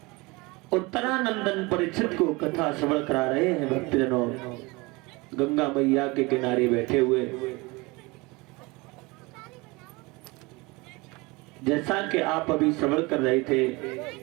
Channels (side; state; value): left; quieter; 24.7 dB